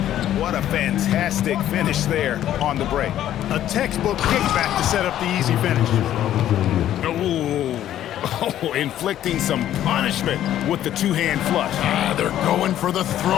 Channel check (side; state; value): right; quieter; 11.9 dB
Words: What a fantastic finish there on the break. A textbook kickback to set up the easy finish. Oh, inflicting some punishment with the two-hand flush. They're going for the